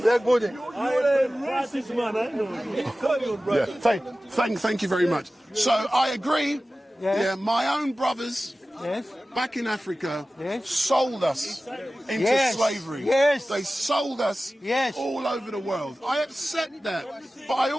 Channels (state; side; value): normal; both; correlation 0.96